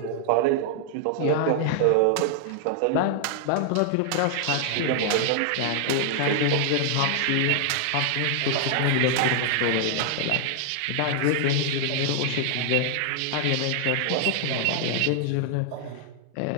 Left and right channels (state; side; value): different; both; correlation 0.00